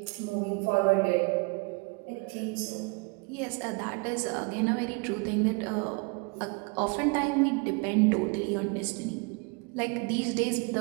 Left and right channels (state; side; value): quieter; left; 30.4 dB